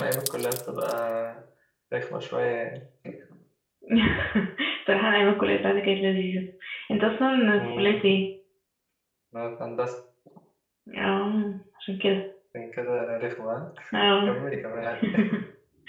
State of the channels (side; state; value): both; identical; correlation 1.00